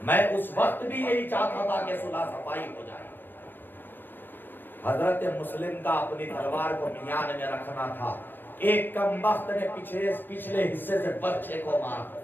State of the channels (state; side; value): late; right; 0.093 ms